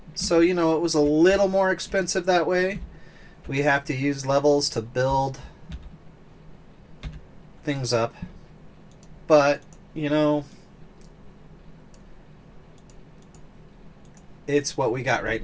So, it was a little more expensive that way. We have to use levels to build things up. But, it's what we got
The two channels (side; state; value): both; identical; correlation 1.00